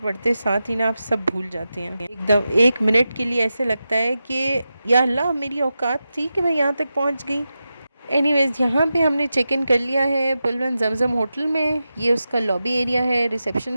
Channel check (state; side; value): inverted; both; correlation -0.91